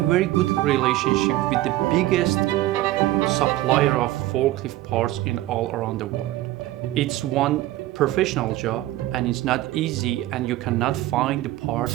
very good relationship with the biggest supplier of forklift parts in all around the world. It's one professional job and it's not easy, and you cannot find the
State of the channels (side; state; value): left; quieter; 15.9 dB